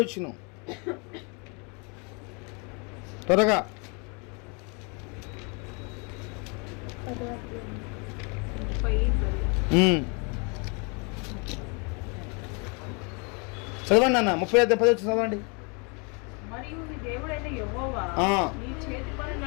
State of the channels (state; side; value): quieter; right; 33.3 dB